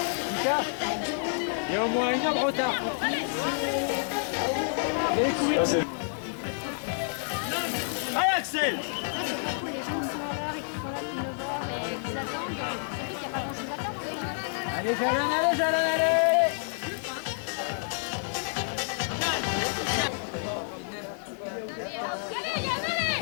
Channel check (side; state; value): right; silent; 59 dB below the other